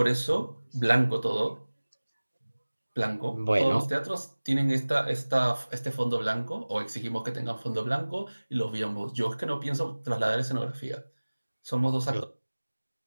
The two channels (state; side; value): inverted; both; correlation -1.00